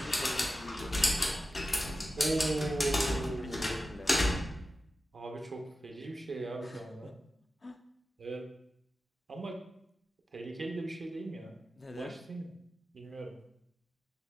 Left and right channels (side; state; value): both; normal; correlation 0.93